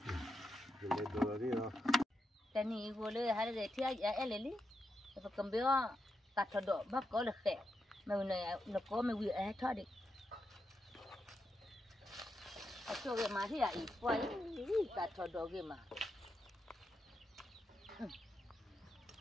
Ledo ni lah. Tani boleh hari dia tiap eleli. Apa kembali tak ada bab kau lekeh. Mau nak kau mau tadi. Aku ke mari ya ibu ini tak ada ke mah.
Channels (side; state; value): both; normal; correlation 0.85